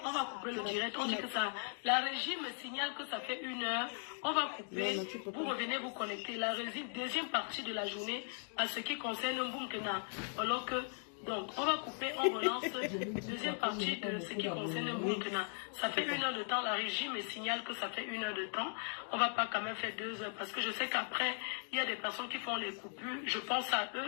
couper le direct. On dit que ça, la régie me signale que ça fait 1 heure. On va couper. Vous revenez vous connecter. La régie, deuxième partie de la journée, à ce qui concerne Mboumkena. Alors que, donc, on va couper, on relance. Deuxième partie de ce qui concerne Mboumkena. Ça fait 1 heure de temps. La régie me signale que ça fait 1 heure de temps. On va pas quand même faire 2 heures parce que je sais qu'après, il y a des personnes qui font les coupures. Je pense à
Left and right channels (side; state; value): right; silent; 52 dB below the other